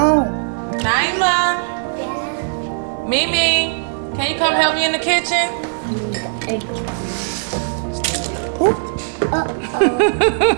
Naima. Yeah. Mimi, can you come help me in the kitchen?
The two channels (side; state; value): left; silent; digital silence